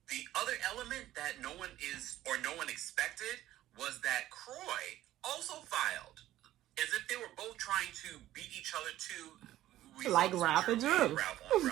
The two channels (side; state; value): left; quieter; 14.1 dB